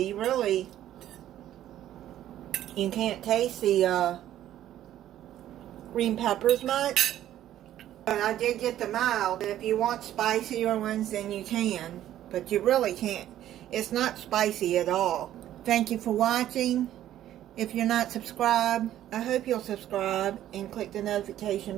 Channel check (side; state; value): left; quieter; 12.3 dB